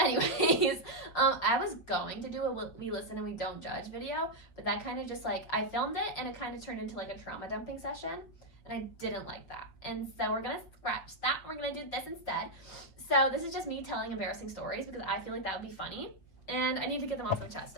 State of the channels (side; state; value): right; late; 6.4 ms